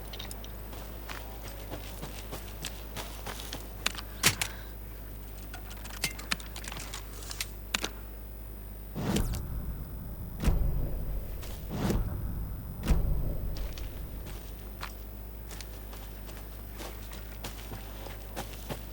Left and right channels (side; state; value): both; identical; correlation 1.00